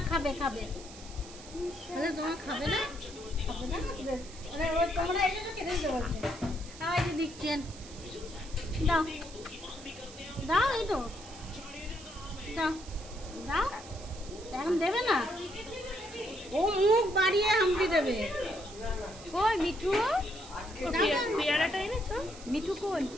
খাবে খাবে তোমার খাবে না খাবে না তোমরা এই জন্য খেতে দিতে বলছে এই যে দিচ্ছেন দাও দাও এই তো দাও দাও এখন দেবে না ও মুখ বাড়িয়ে হামটি দেবে কই মিঠু পেয়ারাটা এনেছো মিঠু কই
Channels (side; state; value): right; noise; hiss, 17 dB below the sound